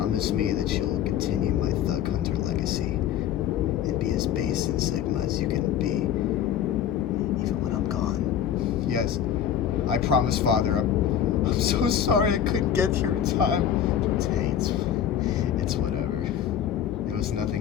me that you'll continue my Thug Hunter legacy and be as base and Sigma as you can be, even when I'm gone. Yes, I promise, Father. I'm so sorry I couldn't get here in time. Hey, it's whatever. There was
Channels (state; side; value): quieter; right; 9.6 dB